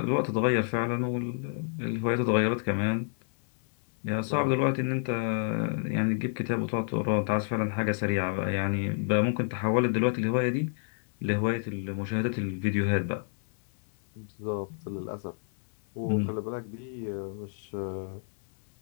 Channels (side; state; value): right; silent; 58 dB below the other